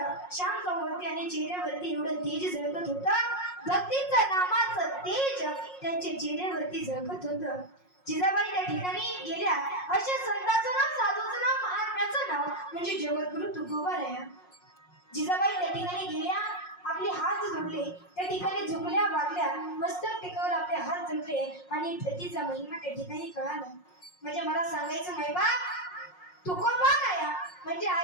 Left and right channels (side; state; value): right; late; 5.5 ms